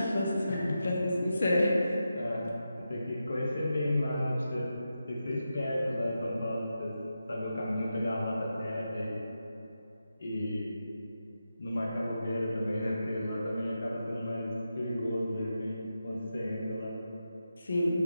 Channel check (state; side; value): inverted; both; correlation -0.89